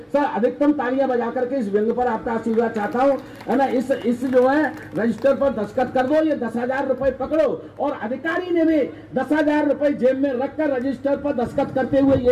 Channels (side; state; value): both; identical; correlation 1.00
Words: सर अधिकतम तालियां बजा करके इस व्यंग पर आपका आशीर्वाद चाहता हूं, है ना। इस जो है रजिस्टर पर दस्तखत कर दो, ये 10,000 रुपए पकड़ो। और अधिकारी ने भी 10,000 रुपए जेब में रखकर रजिस्टर पर दस्तखत करते हुए